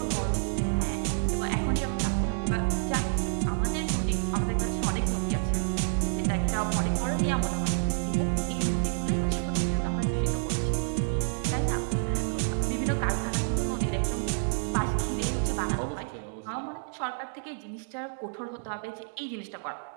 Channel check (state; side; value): silent; left; digital silence